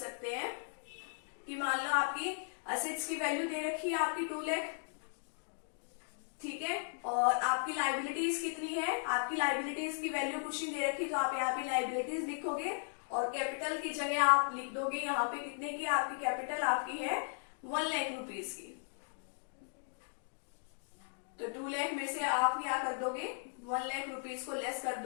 हैं कि मान लो आपकी असेट्स की वैल्यू दे रखी है आपकी 2 लाख, ठीक है। और आपकी लाइबिलिटीज कितनी है, आपकी लाइबिलिटीज की वैल्यू कुछ नहीं दे रखी, तो आप यहाँ पे लाइबिलिटीज लिखोगे और कैपिटल की जगह आप लिख दोगे यहाँ पे कितने की आपकी कैपिटल आपकी है 1 लाख रुपीज की। तो 2 लाख में से आप क्या कर दोगे 1 लाख रुपीज को लेस कर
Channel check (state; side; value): silent; right; digital silence